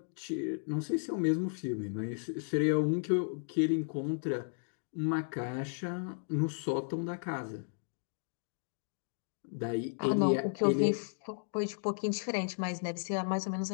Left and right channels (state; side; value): silent; right; digital silence